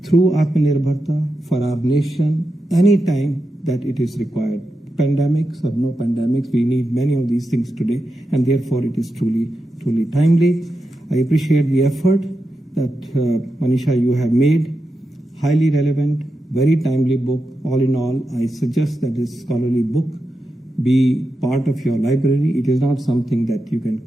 through Atmanirbharta for our nation anytime that it is required. Pandemics or no pandemics, we need many of these things today, and therefore it is truly, truly timely. I appreciate the effort that Manisha, you have made. Highly relevant, very timely book. All in all, I suggest that this scholarly book be part of your library. It is not something that you can,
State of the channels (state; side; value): normal; both; correlation 0.88